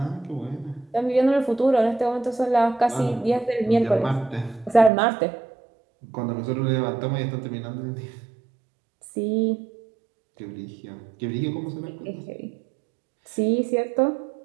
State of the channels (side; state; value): left; drops out; at 4.9 s